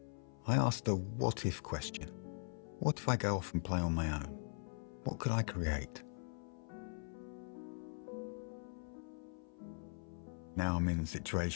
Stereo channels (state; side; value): silent; right; 50 dB below the other